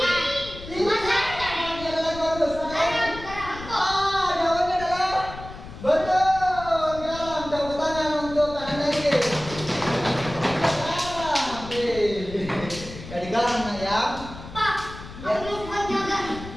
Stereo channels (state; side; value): noise; left; rumble, 13 dB below the sound